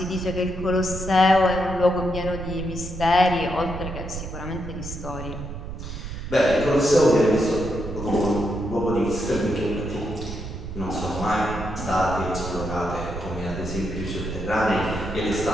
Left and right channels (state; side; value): noise; right; rumble, 8 dB below the sound